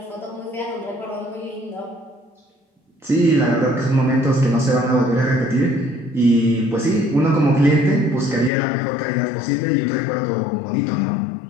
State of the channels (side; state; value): right; drops out; at 8.5 s